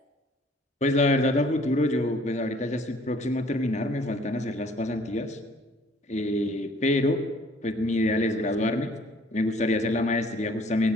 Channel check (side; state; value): both; normal; correlation 0.57